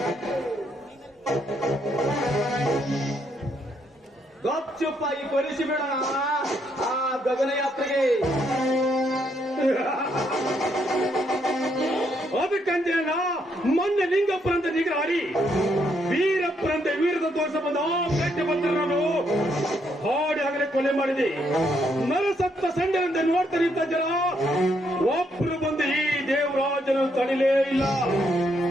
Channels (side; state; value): both; normal; correlation 0.75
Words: ಗಪ್ಚುಪ್ಪಾಗಿ ಕೊಲಿಸಿ ಬಿಡೋಣ ಆ ಗಗನಯಾತ್ರೆಗೆ. ಅದಕ್ಕಂತೇನ ಮೊನ್ನೆ ಲಿಂಗಪ್ಪರಂತೆ ನಿಗ್ರಹಾರಿ ವೀರಪ್ಪರಂತೆ ವೀರದ ತೋರಿಸ ಬಂದ ಗಟ್ಟಿ ಬಂದರು ಹಾಡಿ ಆಗಲೇ ಕೊಲೆ ಮಾಡಿದೆ. ನರಸತ್ತ ಸಂಡೆಯಂತೆ ನೋಡ್ತಾ ನಿಂತ ಜನ ಒಬ್ರು ಬಂದು ಈ ದೇವರಾಜನು ತಡಿಲೇ ಇಲ್ಲ.